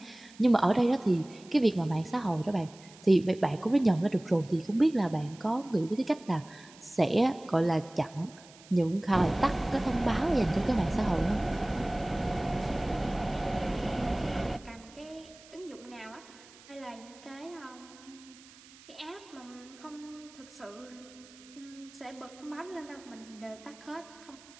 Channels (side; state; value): right; noise; hiss, 23 dB below the sound